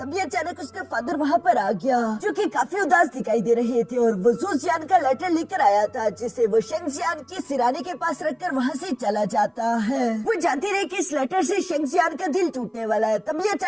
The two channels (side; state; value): both; identical; correlation 1.00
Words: अचानक उसका फादर वहाँ पर आ गया, जो कि काफी उदास दिखाई दे रहे थे और वो सूजियान का लेटर लेकर आया था, जिसे वो शेंगजियान की सिराने के पास रखकर वहाँ से चला जाता है। वो जानती रही कि इस लेटर से शेंगजियान का दिल टूटने वाला है। तभी